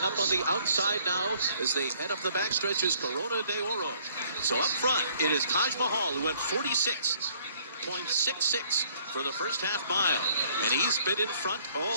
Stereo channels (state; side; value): inverted; both; correlation -0.61